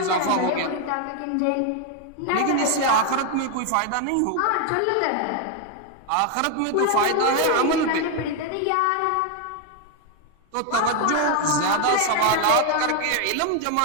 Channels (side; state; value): both; different; correlation 0.01